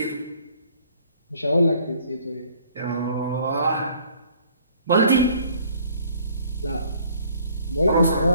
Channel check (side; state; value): both; inverted; correlation -0.58